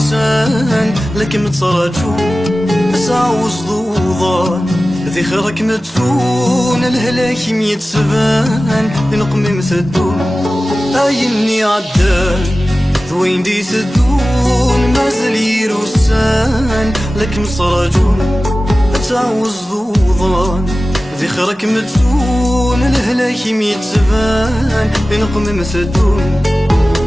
لكن متراجو تعوز ضوضان ذي خيرك متسون الهلاك ميتسبان نقمم ثدون أيني عدان ذوين دي ثدون مازال يروسان لكن متراجو تعوز ضوضان ذي خيرك متسون الهلاك ميتسبان نقمم ثدون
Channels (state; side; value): normal; both; correlation 0.96